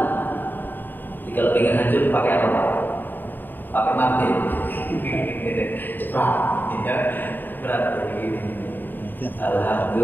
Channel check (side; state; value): right; late; 0.091 ms